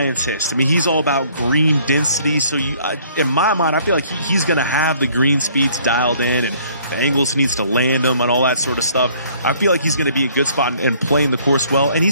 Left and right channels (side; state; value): both; inverted; correlation -0.59